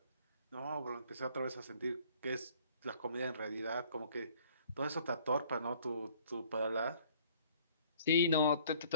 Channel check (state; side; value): inverted; both; correlation -0.55